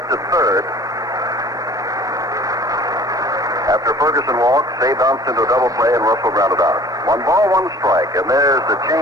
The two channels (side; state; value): both; normal; correlation 0.48